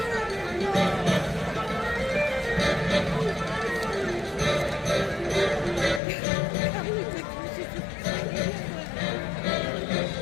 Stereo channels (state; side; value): drops out; right; at 6.0 s